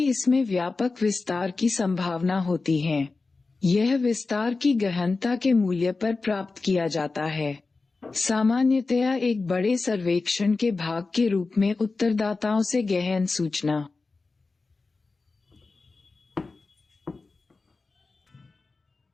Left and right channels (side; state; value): right; quieter; 3.9 dB